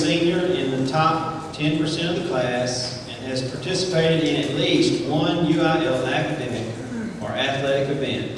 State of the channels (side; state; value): both; identical; correlation 1.00